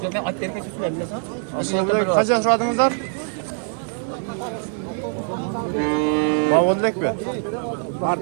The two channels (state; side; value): silent; left; 64 dB below the other